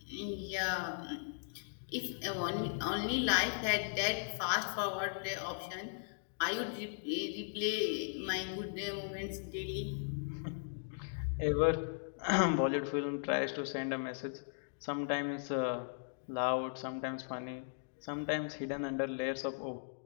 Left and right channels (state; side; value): silent; right; digital silence